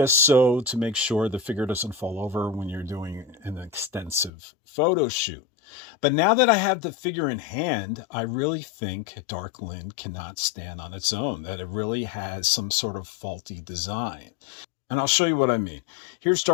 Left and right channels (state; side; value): drops out; right; at 4.3 s